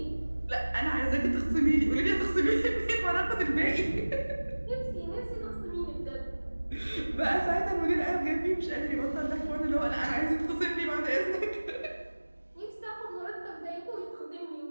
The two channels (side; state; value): both; inverted; correlation -1.00